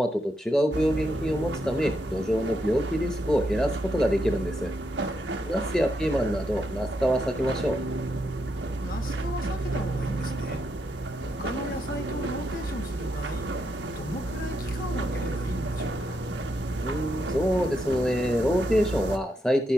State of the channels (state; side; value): normal; both; correlation 0.81